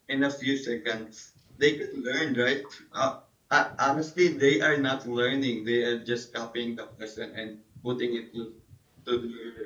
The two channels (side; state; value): both; identical; correlation 1.00